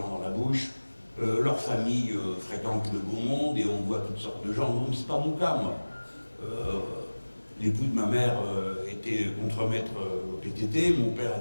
dans la bouche, leur famille fréquente le beau monde et on voit toutes sortes de gens. Non, c'est pas mon cas, moi. L'époux de ma mère était contremaître au PTT, mon père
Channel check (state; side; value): inverted; both; correlation -1.00